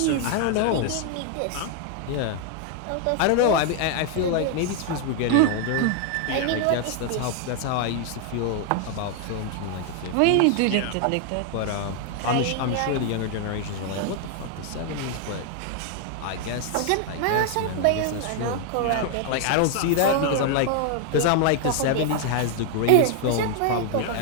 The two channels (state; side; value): different; both; correlation 0.00